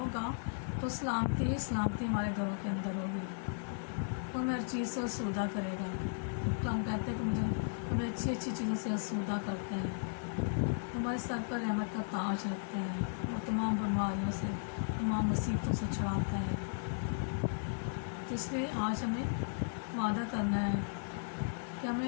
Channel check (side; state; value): right; silent; digital silence